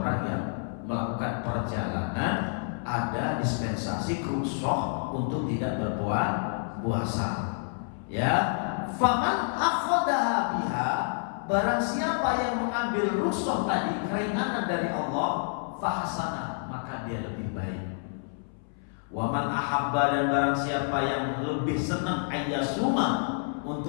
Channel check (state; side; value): silent; right; 59 dB below the other